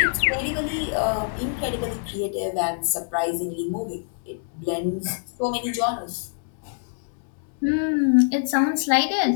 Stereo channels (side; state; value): right; silent; digital silence